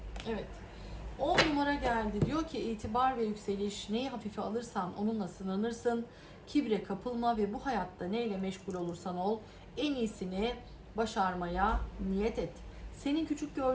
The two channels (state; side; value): identical; both; correlation 1.00